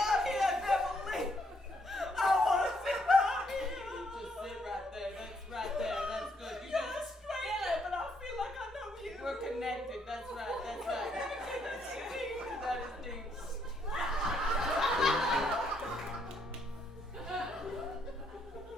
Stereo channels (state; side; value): normal; both; correlation 0.73